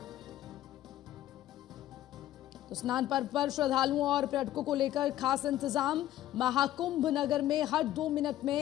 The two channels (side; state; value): right; quieter; 13.5 dB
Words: तो स्नान पर्व पर श्रद्धालुओं और पर्यटकों को लेकर खास इंतजाम। महाकुंभ नगर में हर 2 मिनट